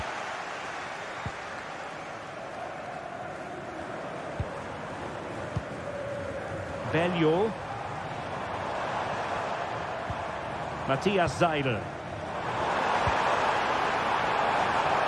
Bello. Matthias Seidel.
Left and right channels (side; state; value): both; identical; correlation 1.00